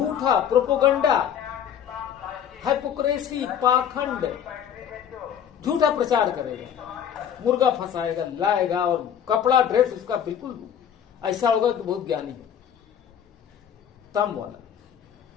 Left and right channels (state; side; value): quieter; right; 8.8 dB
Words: प्रोपोगंडा, हाइपोक्रेसी, पाखंड, झूठा प्रचार करेगा, मुर्गा फंसाएगा, लाएगा, और कपड़ा ड्रेस उसका बिल्कुल ऐसा होगा कि बहुत ज्ञानी है। तम वाला